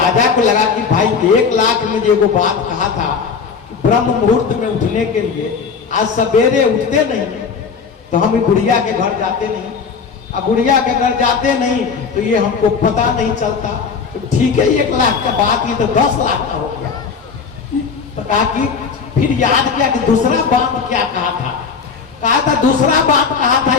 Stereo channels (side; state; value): right; quieter; 5.7 dB